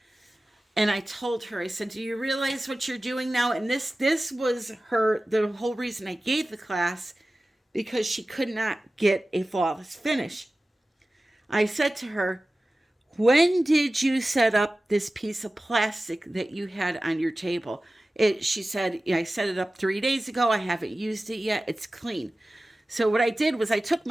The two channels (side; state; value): both; normal; correlation 0.96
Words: And I told her, I said, do you realize what you're doing now? And this was the whole reason I gave the class, because she could not get a flawless finish. I said to her, when did you set up this piece of plastic that you had on your table? She said, I set it up 3 days ago. I haven't used it yet. It's clean. So what I did was I took